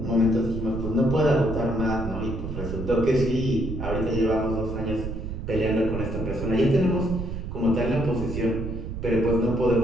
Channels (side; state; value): right; noise; rumble, 6 dB below the sound